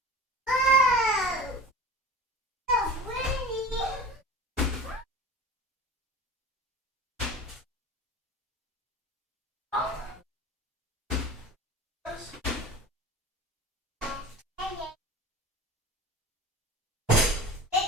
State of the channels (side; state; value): both; normal; correlation 0.35